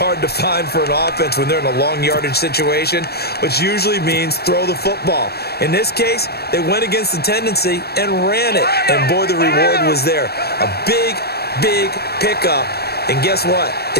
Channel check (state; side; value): late; right; 0.46 ms